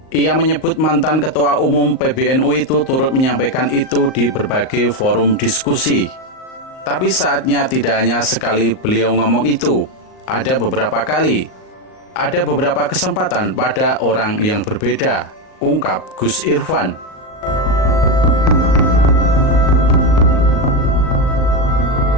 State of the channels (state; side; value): late; right; 38 ms